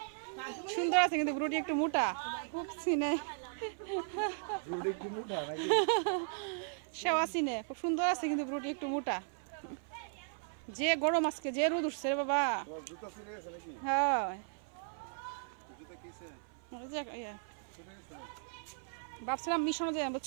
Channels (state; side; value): silent; left; 53 dB below the other